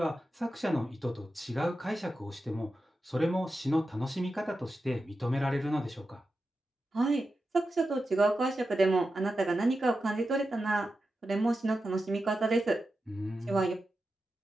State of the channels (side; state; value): both; normal; correlation 0.91